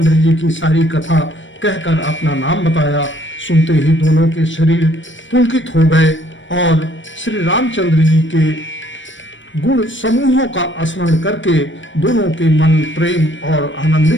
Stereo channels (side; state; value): right; late; 0.55 ms